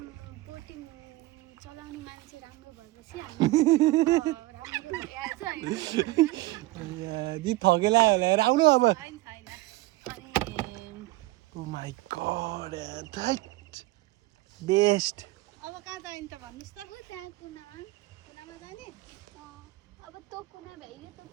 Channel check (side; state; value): left; quieter; 19.6 dB